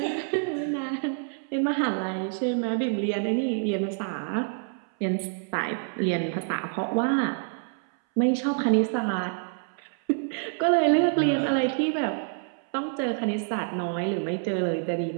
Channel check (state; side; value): silent; left; 60 dB below the other